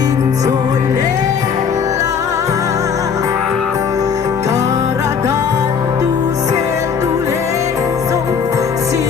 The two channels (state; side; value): quieter; right; 6.6 dB